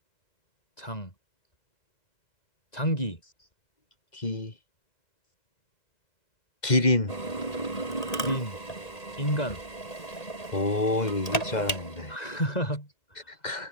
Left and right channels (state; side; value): late; right; 1.8 ms